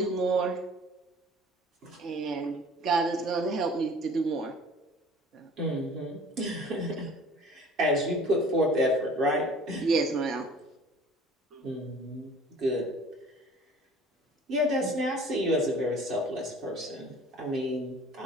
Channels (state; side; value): normal; both; correlation 0.48